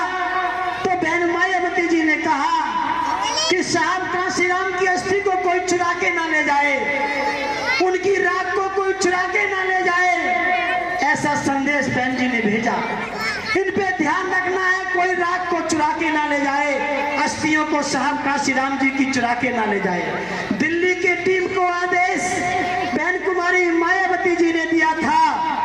तो बहन मायावती जी ने कहा कि साहब काशीराम की अस्थि को कोई चुरा के ना ले जाए, उनकी राख को कोई चुरा के ना ले जाए, ऐसा संदेश बहन जी ने भेजा। इन पे ध्यान रखना है, कोई राख को चुरा के ना ले जाए, अस्थियों को साहब काशीराम जी की चुरा के ना ले जाए। दिल्ली की टीम को आदेश बहन कुमारी मायावती जी ने दिया था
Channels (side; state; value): right; noise; hum, 27 dB below the sound